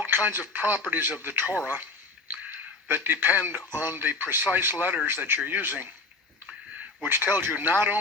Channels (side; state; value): right; quieter; 3.6 dB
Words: kinds of properties of the Torah that depend on the precise letters that you're using, which tells you not